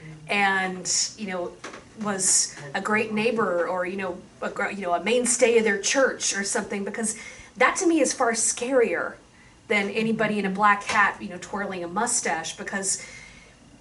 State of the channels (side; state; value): both; identical; correlation 1.00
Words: and, was a great neighbor or, a mainstay of their church or something, because that to me is far scarier than anybody in a black hat, twirling a mustache, because